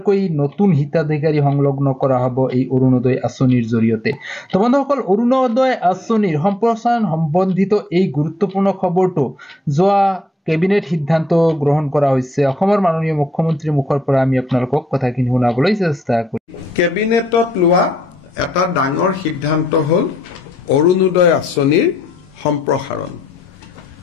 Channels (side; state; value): both; normal; correlation 0.77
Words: নতুন হিতাধিকাৰী সংলগ্ন কৰা হ'ব এই অৰুণোদয় আঁচনিৰ জৰিয়তে তো বন্ধুসকল অৰুণোদয় আঁচনিৰ সম্প্ৰসাৰণ সম্বন্ধিত এই গুৰুত্বপূৰ্ণ খবৰটো যোৱা কেবিনেট সিদ্ধান্ত গ্ৰহণ কৰা হৈছে অসমৰ মাননীয় মুখ্যমন্ত্ৰীৰ মুখৰ পৰা আমি আপোনালোকক কথাখিনি শুনাবলৈ চেষ্টা কৰিম কেবিনেটত লোৱা এটা ডাঙৰ সিদ্ধান্ত হ'ল অৰুণোদয় আঁচনিৰ সম্প্ৰসাৰণ